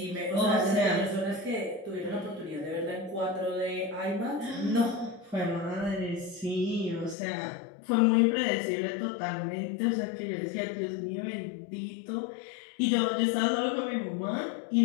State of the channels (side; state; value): right; drops out; at 7.2 s